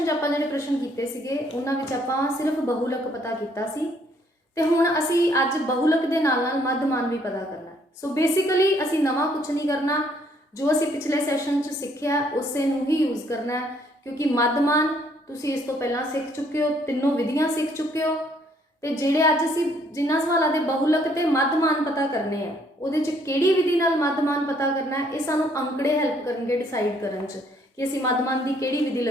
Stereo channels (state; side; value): normal; both; correlation 0.66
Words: च आपां जिहड़े प्रश्न कीते सीगे उन्हां विच आपां सिर्फ बहुलक पता कीता सी ते हुण असी अज बहुलक दे नाल नाल मध्यमान भी पता करना। सो बेसिकली असी नवां कुछ नहीं करना, जो असी पिछले सैशन च सिੱਖਿਆ उसे नूं ही यूज़ करना है, क्योंकि मध्यमान तुसीं इस तो पहला सीख चुके हो, तीनों विधियां सीख चुके हो। तो जिहड़े अज असी जिन्हां सवालों के बहुलक ते मध्यमान पता करने हैं उहदे च किहड़ी विधि नाल मध्यमान पता करना है, ये सानूं अंकड़े हैल्प करनगे डिसाइड करन च कि असी मध्यमान की किहड़ी विधि